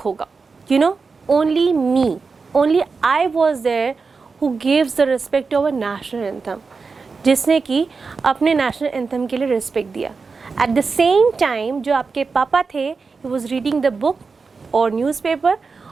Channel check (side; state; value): left; quieter; 4.7 dB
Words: होगा. You know, only me, only I was there who gives the respect to our national anthem. जिसने कि अपने नेशनल एंथम के लिए रिस्पेक्ट दिया. एट द सेम टाइम जो आपके पापा थे, he was reading the book और न्यूज़पेपर,